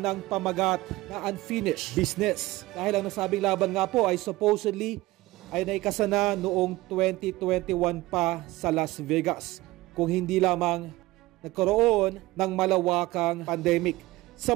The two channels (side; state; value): left; quieter; 19.0 dB